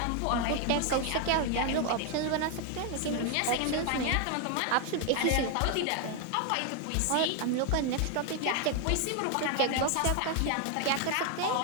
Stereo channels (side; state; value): both; different; correlation 0.01